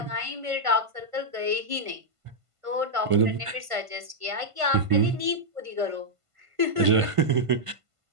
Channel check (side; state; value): left; late; 1.5 ms